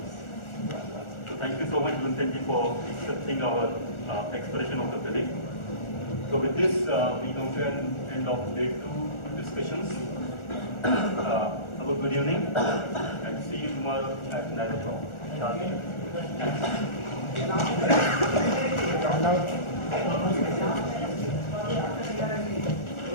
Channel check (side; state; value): right; late; 1.4 ms